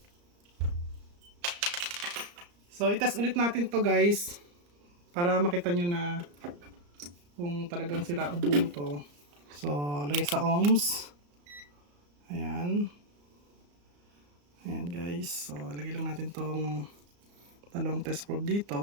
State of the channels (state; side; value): late; left; 34 ms